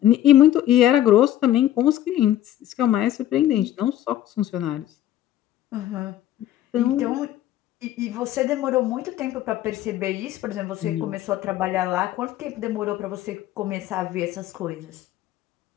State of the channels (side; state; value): right; quieter; 12.7 dB